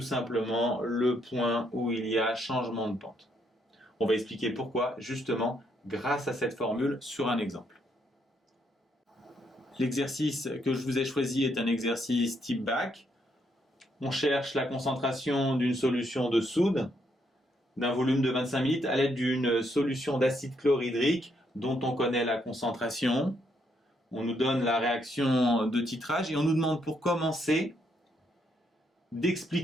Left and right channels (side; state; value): both; normal; correlation 0.75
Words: simplement le point où il y a changement de pente. On va expliquer pourquoi, justement, grâce à cette formule sur un exemple. L'exercice que je vous ai choisi est un exercice type bac. On cherche la concentration d'une solution de soude d'un volume de 25 ml à l'aide d'une solution d'acide chlorhydrique dont on connaît la concentration. On nous donne la réaction de titrage et on nous demande pour commencer